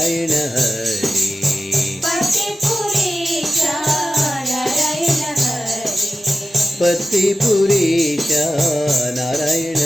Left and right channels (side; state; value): both; normal; correlation 0.93